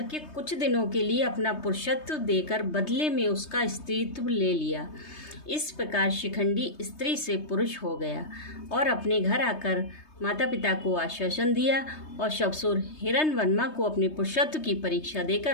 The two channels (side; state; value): right; late; 3.2 ms